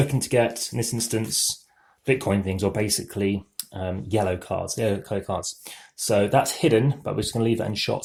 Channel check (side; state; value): both; identical; correlation 1.00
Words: to get, in this instance, Bitcoin things, or basically yellow cards, yellow colour cards. So that's hidden, but we're just going to leave that in shot